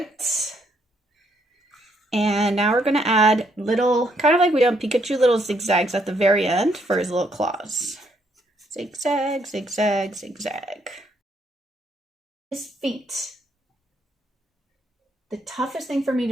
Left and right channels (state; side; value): normal; both; correlation 0.72